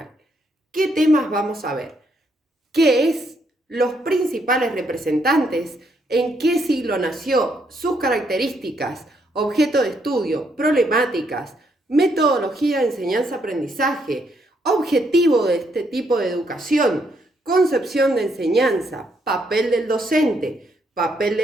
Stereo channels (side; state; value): both; normal; correlation 0.74